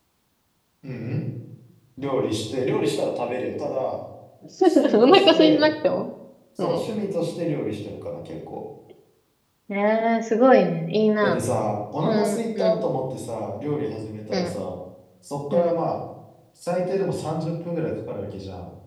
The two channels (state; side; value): identical; both; correlation 1.00